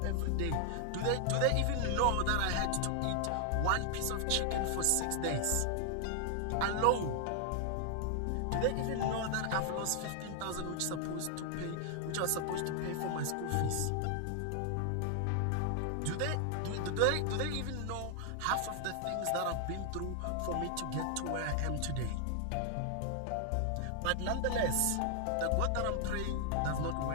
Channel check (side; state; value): both; different; correlation 0.00